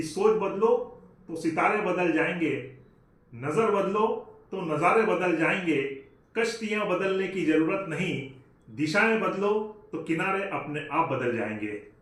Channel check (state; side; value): identical; both; correlation 1.00